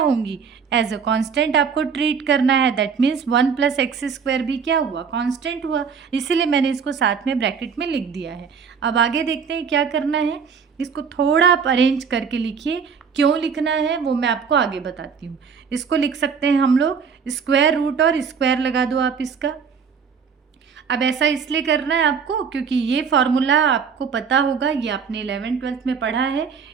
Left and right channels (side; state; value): left; quieter; 6.3 dB